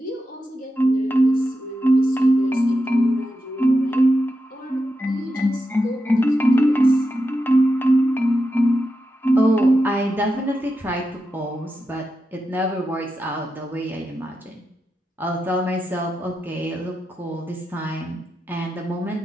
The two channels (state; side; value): normal; both; correlation 0.88